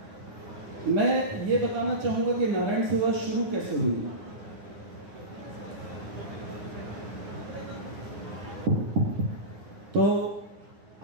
मैं ये बताना चाहूंगा कि नारायण सेवा शुरू कैसे हुई। तो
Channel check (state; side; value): late; left; 10 ms